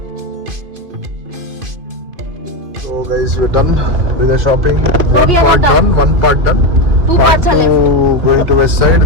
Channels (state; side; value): late; left; 2.5 ms